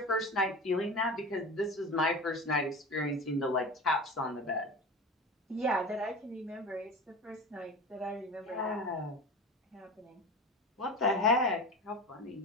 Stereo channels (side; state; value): both; normal; correlation 0.31